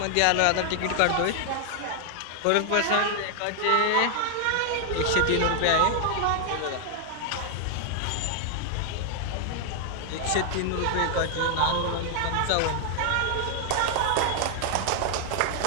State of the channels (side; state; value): both; different; correlation 0.00